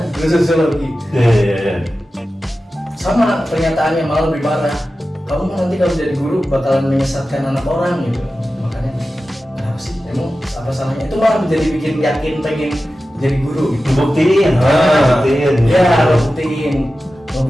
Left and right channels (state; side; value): normal; both; correlation 0.94